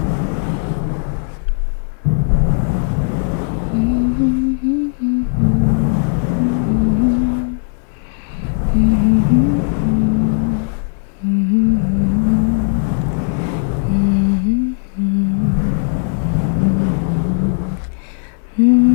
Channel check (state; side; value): silent; right; 68 dB below the other